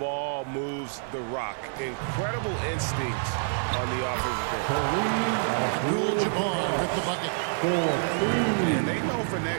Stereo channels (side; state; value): left; silent; digital silence